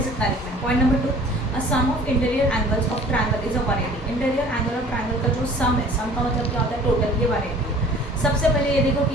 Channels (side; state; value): both; normal; correlation 0.49